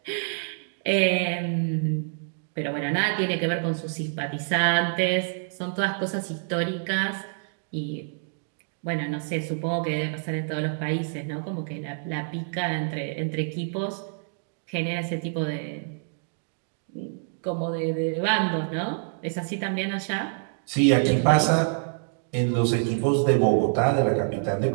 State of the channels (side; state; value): left; silent; digital silence